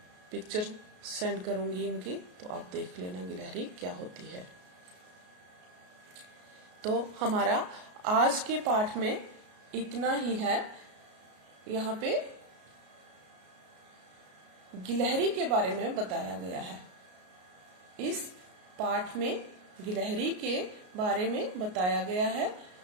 पिक्चर सेंड करूंगी इनकी, तो आप देख लेना गिलहरी क्या होती है। तो हमारा आज के पाठ में इतना ही है। यहाँ पे गिलहरी के बारे में बताया गया है। इस पाठ में गिलहरी के बारे में बताया गया है।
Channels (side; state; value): left; late; 33 ms